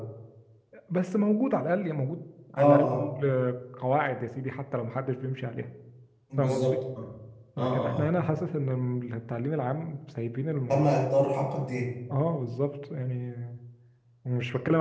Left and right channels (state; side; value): identical; both; correlation 1.00